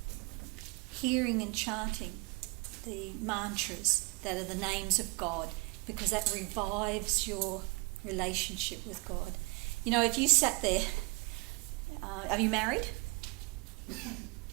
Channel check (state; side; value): quieter; left; 28.7 dB